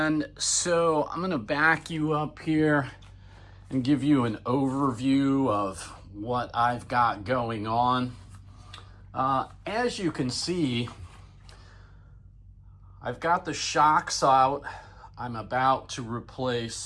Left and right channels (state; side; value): identical; both; correlation 1.00